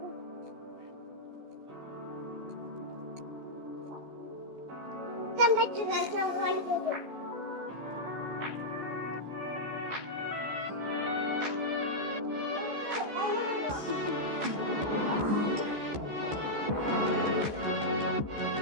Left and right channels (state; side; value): late; left; 14 ms